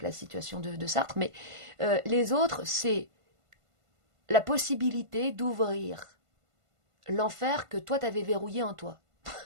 la situation de Sartre, mais les autres c'est la possibilité d'ouvrir l'enfer que toi t'avais verrouillé en toi.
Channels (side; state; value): left; late; 1.5 ms